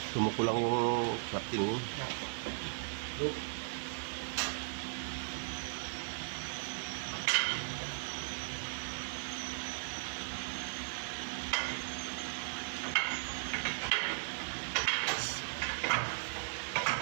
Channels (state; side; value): silent; left; 53 dB below the other